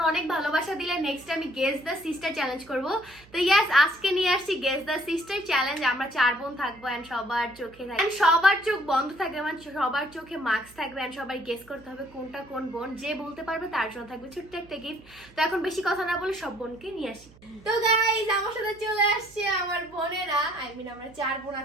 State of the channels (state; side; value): noise; right; hum, 25 dB below the sound